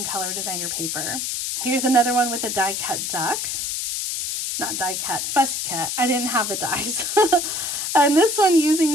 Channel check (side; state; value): left; noise; hiss, 2 dB below the sound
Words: color designer paper. Here's another one with a die cut duck. Not die cut, fussy cut. I didn't have the dies. And this one